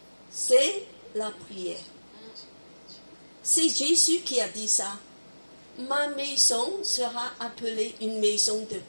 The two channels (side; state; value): both; inverted; correlation -1.00